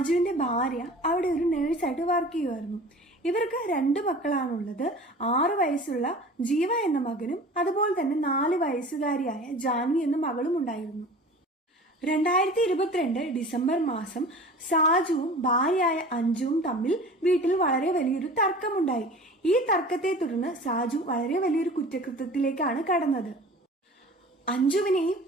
ഭാര്യ അവിടെ ഒരു നേഴ്സായിട്ട് വർക്ക് ചെയ്യുമായിരുന്നു. ഇവർക്ക് 2 മക്കളാണുള്ളത്. 6 വയസ്സുള്ള ജീവ എന്ന മകനും അതുപോലെ തന്നെ 4 വയസ്സുകാരിയായ ജാൻവി എന്ന മകളും ഉണ്ടായിരുന്നു. 2022 ഡിസംബർ മാസം സാജുവും ഭാര്യയായ അഞ്ജുവും തമ്മിൽ വീട്ടിൽ വളരെ വലിയൊരു തർക്കമുണ്ടായി. ഈ തർക്കത്തെ തുടർന്ന് സാജു വളരെ വലിയൊരു കുറ്റകൃത്യത്തിലേക്കാണ് കടന്നത്. അഞ്ജുവിനെയും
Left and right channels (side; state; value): both; normal; correlation 0.41